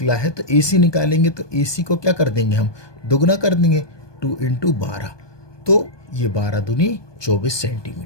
है तो AC निकालेंगे, तो AC को क्या कर देंगे, हम दोगुना कर देंगे, 2 × 12, तो ये 12 दूनी 24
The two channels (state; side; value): late; right; 1.2 ms